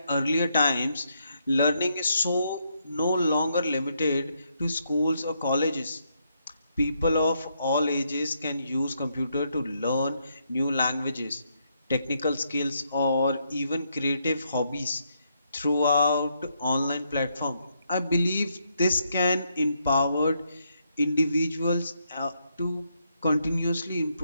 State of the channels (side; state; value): both; inverted; correlation -0.77